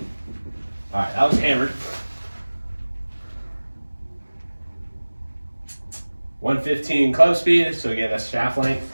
All right, that was hammered. 115 club speed, so again, that's shaft length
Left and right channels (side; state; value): both; inverted; correlation -1.00